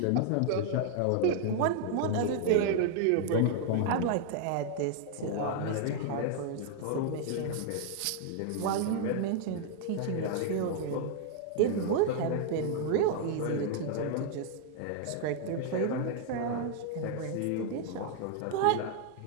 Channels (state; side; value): different; both; correlation 0.00